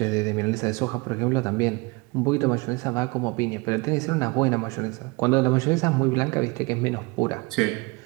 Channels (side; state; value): left; quieter; 26.5 dB